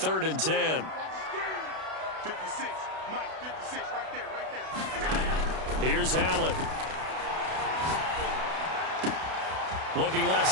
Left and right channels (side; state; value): left; late; 32 ms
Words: and 10. 56, Mike, 56, right there. Here's Allen. Looking left